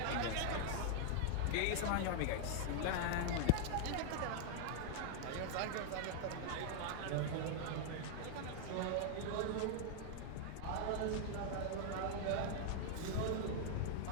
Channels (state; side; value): different; both; correlation 0.00